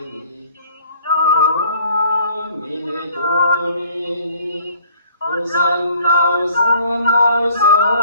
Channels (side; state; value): both; inverted; correlation -0.56